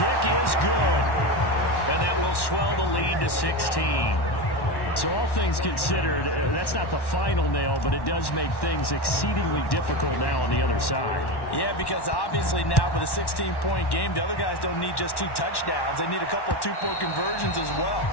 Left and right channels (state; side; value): late; right; 1.1 ms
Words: is good. And that will swell the lead to 16. So all things considered, that's not the final nail, but it does make things exceedingly difficult now on the other side. Yeah, because obviously now with a 16-point game, the other guys don't need just 2 touchdowns. They need a couple of 2-point conversions as well.